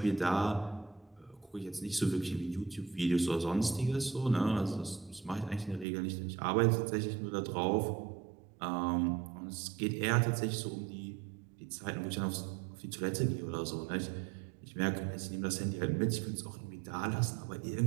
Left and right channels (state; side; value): drops out; left; at 5.9 s